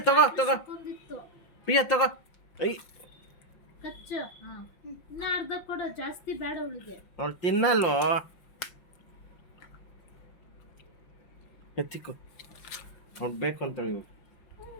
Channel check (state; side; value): late; right; 5.7 ms